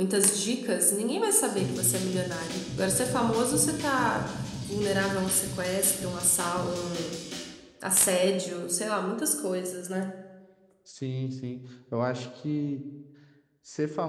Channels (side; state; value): both; identical; correlation 1.00